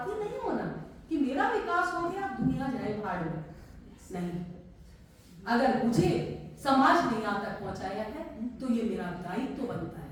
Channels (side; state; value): both; identical; correlation 1.00